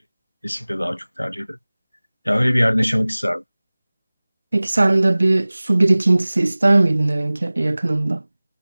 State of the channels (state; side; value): inverted; both; correlation -0.99